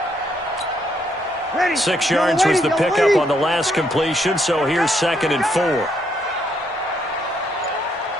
Ready. 6 yards was the pickup on the last completion, so here's 2nd and 4.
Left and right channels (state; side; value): normal; both; correlation 0.73